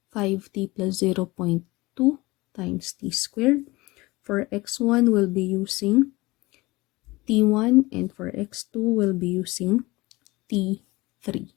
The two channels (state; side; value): quieter; right; 21.6 dB